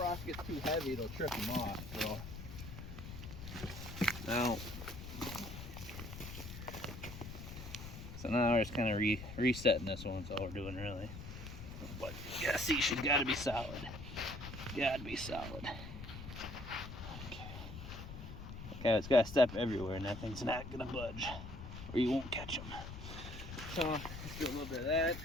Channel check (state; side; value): noise; left; rumble, 10 dB below the sound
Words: gets too heavy, it'll trip them off. So now we're just kind of resetting this one. That's all we're doing really. But yeah, see, she's got to be solid. Got to be solid. Okay, it's got to step everywhere, and that thing's not gonna budge, or you won't catch them. So let's do a little bit of that.